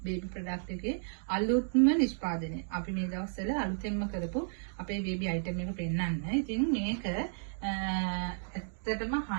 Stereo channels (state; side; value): silent; left; digital silence